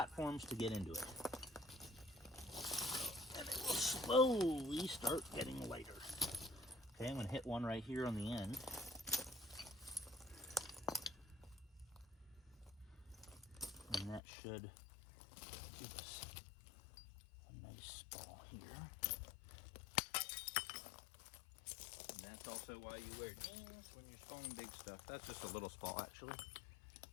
to get into it, and it will slowly start getting lighter. Okay, I'm gonna hit one right here on the end. And that should give us a nice ball here. that's also why you wear jeans when you're spalling big stuff. That's just a little spall, actually.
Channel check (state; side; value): drops out; right; at 14.2 s